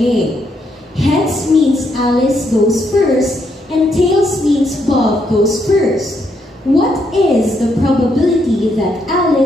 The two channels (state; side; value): normal; both; correlation 0.76